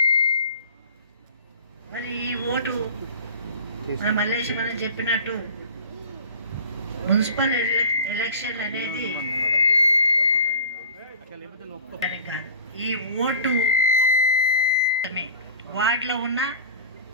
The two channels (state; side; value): inverted; both; correlation -0.39